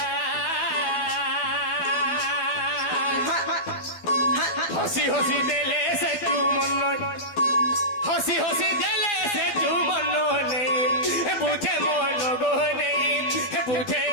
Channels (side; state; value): right; late; 12 ms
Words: হসি হসি দেলে সে চুমন হসি হসি দেলে সে চুমন নেই বুঝে মন গো নেই বুঝে